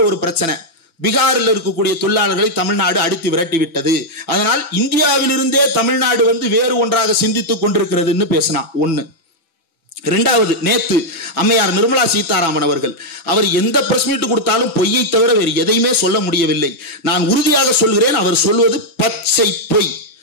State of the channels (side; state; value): right; late; 6.0 ms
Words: ஒரு பிரச்சனை, பீகாரில் இருக்கக்கூடிய தொழிலாளர்களை தமிழ்நாடு அடித்து விரட்டி விட்டது, அதனால் இந்தியாவிலிருந்தே தமிழ்நாடு வேறு ஒன்றாக சிந்தித்துக் கொண்டிருக்கிறதுன்னு பேசினான். ஒண்ணு. இரண்டாவது, நேத்து அம்மையார் நிர்மலா சீதாராமன் அவர் எந்த பிரஸ் மீட் கொடுத்தாலும் பொய்யை தவிர வேறு எதையுமே சொல்ல முடியவில்லை. நான் உறுதியாக சொல்கிறேன், அவர் சொல்வது பச்சை பொய்.